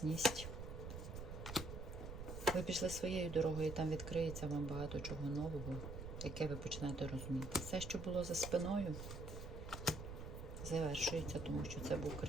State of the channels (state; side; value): noise; right; rumble, 8 dB below the sound